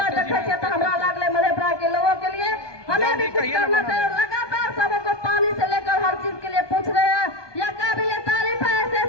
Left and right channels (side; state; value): right; late; 1.2 ms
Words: तो हमारा लागले मधेपुरा के लोगों के लिए हमें भी कुछ करना चाहिए। लगातार सबको पानी से लेकर हर चीज के लिए पूछ रहे हैं, यह काबिल तारीफ है।